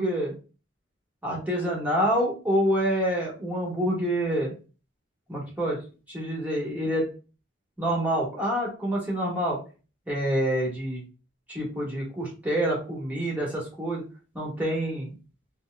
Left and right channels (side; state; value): both; normal; correlation 0.49